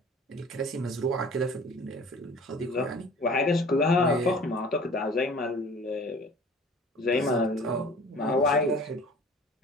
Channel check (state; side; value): normal; both; correlation 0.45